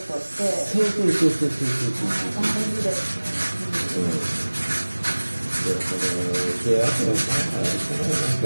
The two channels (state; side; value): inverted; both; correlation -1.00